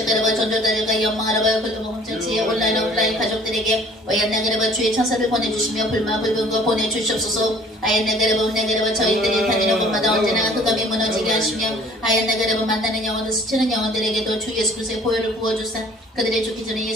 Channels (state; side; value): normal; both; correlation 0.53